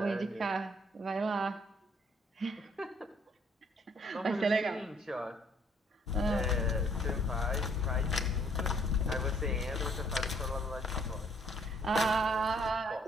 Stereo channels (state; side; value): normal; both; correlation 0.64